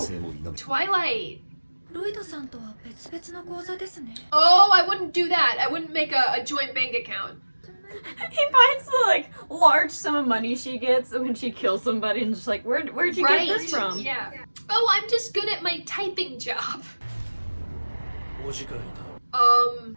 も否め。 Twilight. ロイドさんとは別々の口座ですね。 Oh, I wouldn't do that. I wouldn't make a joint bank account. He finds the like large sum of money she gets when she kills somebody and just like, where'd you Right. get this from? Yeah. Oh, I'm just good at my typing job. お時間いただ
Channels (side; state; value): both; inverted; correlation -1.00